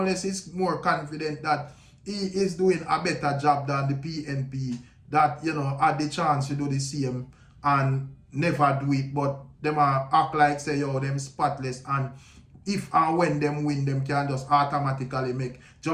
is more confident that he is doing a better job than the PNP that, you know, had the chance to do the same and never do it, but them act like say, yo, them spotless, and if and when them win, them can just automatically make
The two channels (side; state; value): both; identical; correlation 1.00